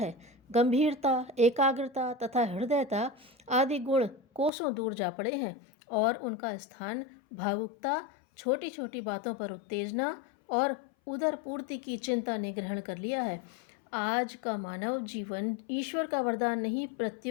गंभीरता, एकाग्रता तथा हृदयता आदि गुण कोसों दूर जा पड़े हैं और उनका स्थान भावुकता, छोटी छोटी बातों पर उत्तेजना और उदर पूर्ति की चिंता ने ग्रहण कर लिया है। आज का मानव जीवन ईश्वर का वरदान नहीं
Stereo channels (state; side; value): drops out; right; at 4.5 s